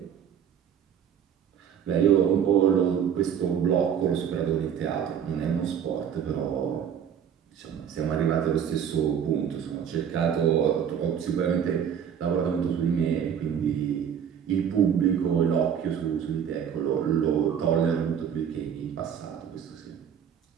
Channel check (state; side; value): quieter; left; 8.4 dB